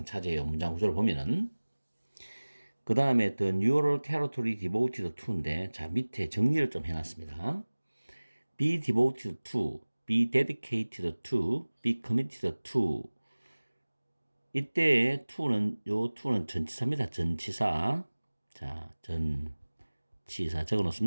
차지해요. 문장 구조를 보면은. 그 다음에 the neural territory devoted to인데 자 밑에 정리를 좀 해놨습니다. be devoted to, be dedicated to, be committed to 이때 to는 요 to는 전치사입니다. 전치사. 자, 전치사 적어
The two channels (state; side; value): inverted; both; correlation -1.00